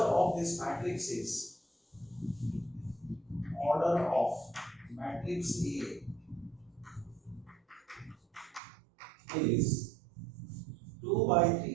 this matrix is order of matrix A is 2 by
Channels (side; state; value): left; drops out; at 8.6 s